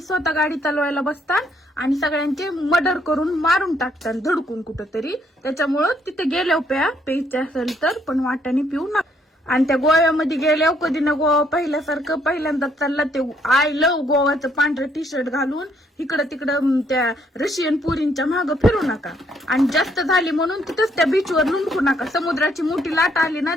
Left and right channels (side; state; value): both; normal; correlation 0.69